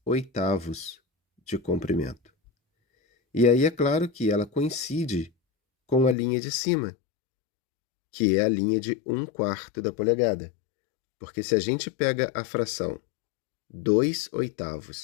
de comprimento. E aí é claro que ela coincide com a linha de cima, que é a linha de 1/4 da polegada. Porque se a gente pega a fração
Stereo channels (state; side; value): drops out; right; at 6.2 s